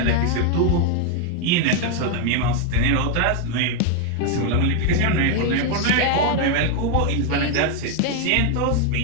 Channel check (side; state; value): both; different; correlation 0.00